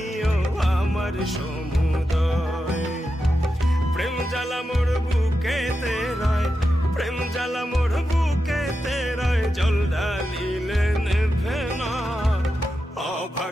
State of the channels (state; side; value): normal; both; correlation 0.89